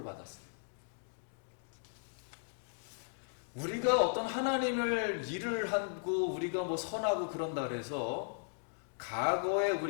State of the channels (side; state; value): right; silent; digital silence